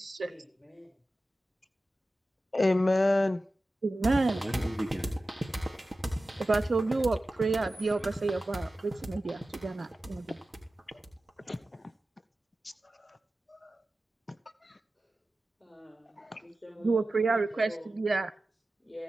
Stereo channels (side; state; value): both; normal; correlation 0.95